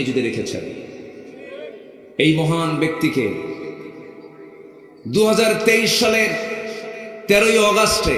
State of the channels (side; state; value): both; identical; correlation 1.00